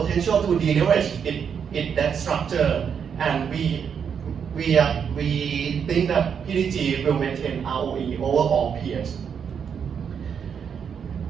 to deleverage its debt structure, and we think that PTG will maintain ROE over all peers.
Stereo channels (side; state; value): left; quieter; 7.2 dB